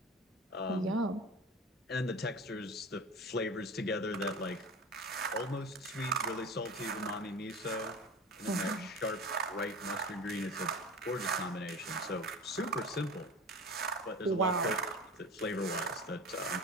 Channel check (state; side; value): normal; both; correlation 0.32